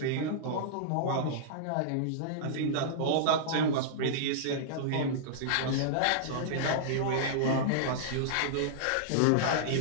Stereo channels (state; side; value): different; both; correlation -0.02